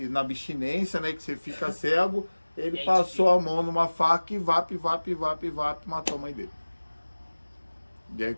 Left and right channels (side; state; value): both; inverted; correlation -1.00